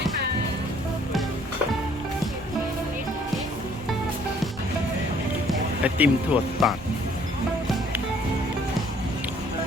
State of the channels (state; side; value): normal; both; correlation 0.60